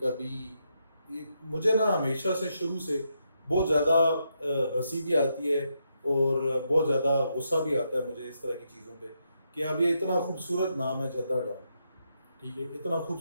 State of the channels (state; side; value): inverted; both; correlation -0.81